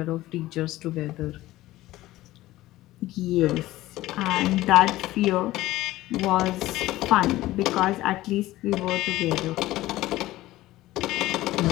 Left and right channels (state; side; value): quieter; right; 16.6 dB